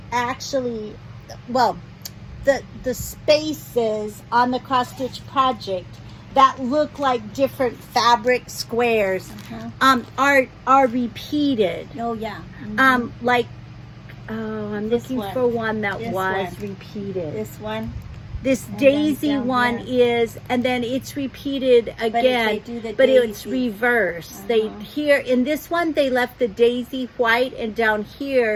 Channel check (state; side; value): identical; both; correlation 1.00